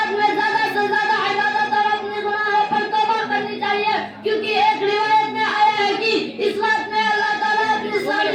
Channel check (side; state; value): both; identical; correlation 1.00